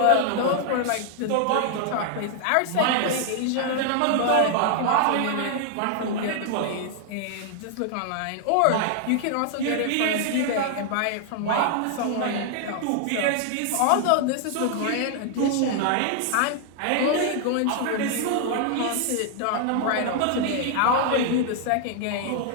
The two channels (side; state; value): both; different; correlation 0.00